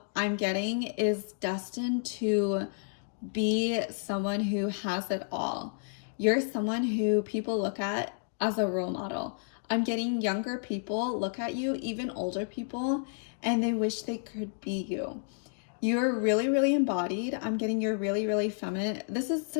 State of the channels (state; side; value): silent; right; digital silence